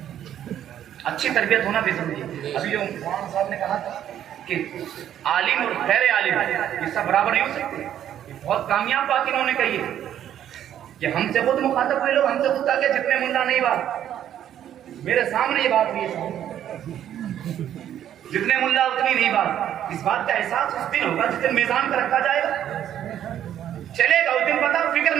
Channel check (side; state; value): left; quieter; 10.7 dB